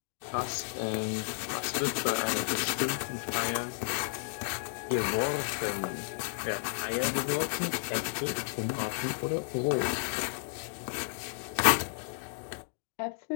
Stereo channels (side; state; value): right; silent; digital silence